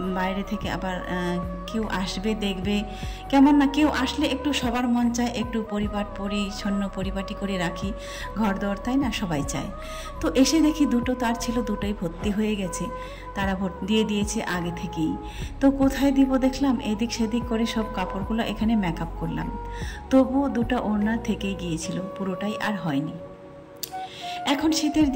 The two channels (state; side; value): identical; both; correlation 1.00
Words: বাইরে থেকে আবার কেউ আসবে দেখবে, কেমন না, কেউ আসলে একটু সবার মন চায় একটু পরিচ্ছন্ন পরিপাটি করে রাখি ঘর দর, তাই না, সবাই চায়। তো এসে দেখি দুটো তার ছিল, দুটোই ভর্তি হয়ে গেছে, তারা দিয়ে দিয়েছে আগে থেকেই। তো কোথায় দিব দেখলাম, এদিক সেদিক করে সব কাপড়গুলো এখানে মেকআপ করলাম, তবু দুটো ওড়না থেকেই গিয়েছিল, পুরোটাই আর হয়নি। এখন শীতের